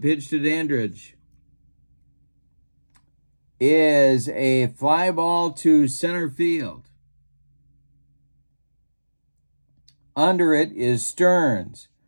to Dandridge, is a fly ball to center field. Under it is Stearns.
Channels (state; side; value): inverted; both; correlation -1.00